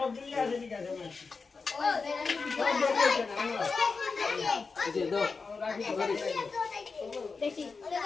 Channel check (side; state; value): right; quieter; 4.6 dB